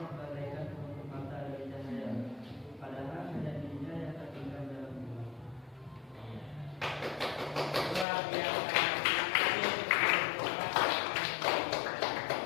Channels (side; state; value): right; drops out; at 8.1 s